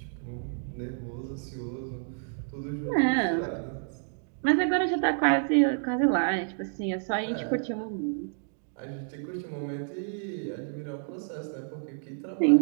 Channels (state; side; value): silent; left; digital silence